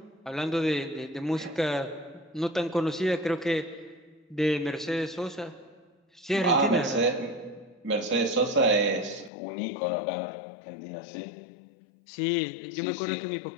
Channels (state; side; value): drops out; right; at 9.3 s